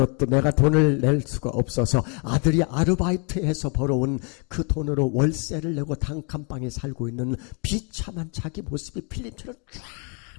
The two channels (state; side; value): quieter; right; 36.7 dB